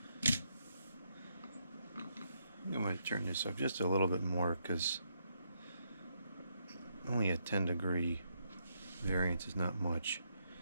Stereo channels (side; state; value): both; inverted; correlation -0.77